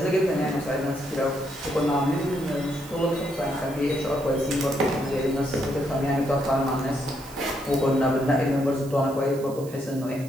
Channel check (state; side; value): noise; right; hiss, 19 dB below the sound